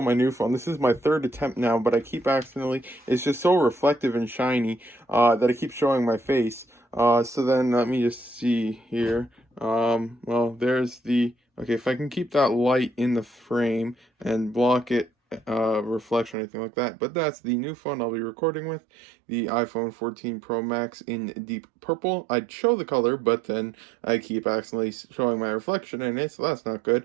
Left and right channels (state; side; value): drops out; left; at 16.4 s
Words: my new phone. This is my third attempt now, but I keep accidentally, it's just so reflective and shiny that I keep showing my face. So then let me just see here. Well, there's the, okay, if I can keep that light in the frame and block it, reflection or anything like that, but that's the new phone I'll be recording with, the iPhone 14 Pro Max in deep purple. I'd show the color, but then I keep accidentally showing my reflection in it, so that's not good.